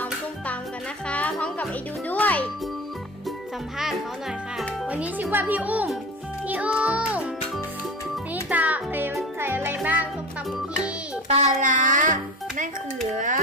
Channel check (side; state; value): both; normal; correlation 0.31